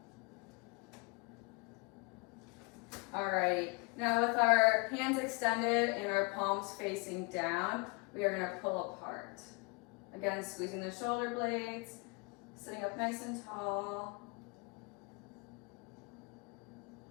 Alrighty, now with our hands extended and our palms facing down, we are gonna pull apart. Again, squeezing the shoulder blades, sitting up nice and tall.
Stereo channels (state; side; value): quieter; right; 30.2 dB